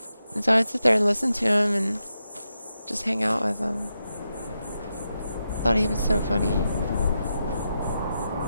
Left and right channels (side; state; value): both; inverted; correlation -0.87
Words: And so I'd sit there and listen to him and just hang out with him. Thought he was so funny.